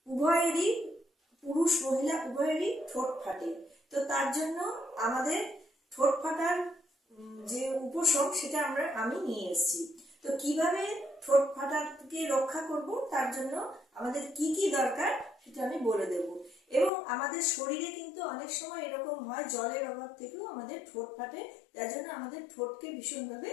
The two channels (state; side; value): drops out; right; at 16.9 s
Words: উভয়েরই, পুরুষ মহিলা উভয়েরই ঠোঁট ফাটে। তো তার জন্য আমাদের ঠোঁট ফাটার যে উপশম সেটা আমি নিয়ে এসেছি। তো কিভাবে ঠোঁট ফাটাকে রক্ষা করব, তার জন্য আমাদের কি কি দরকার সেটা আমি বলে দেব। এবং আমাদের শরীরে কিন্তু অনেক সময় এরকম হয়, জলের অভাব থেকেও আমাদের ঠোঁট ফাটে। যার জন্য আমাদের ঠোঁটকে ভীষণভাবে